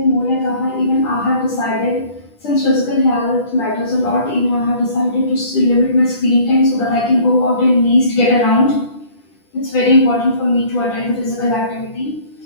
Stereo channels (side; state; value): right; late; 10 ms